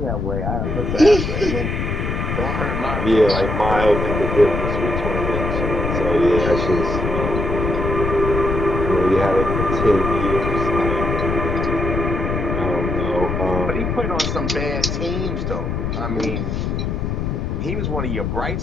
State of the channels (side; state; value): left; noise; rumble, 2 dB below the sound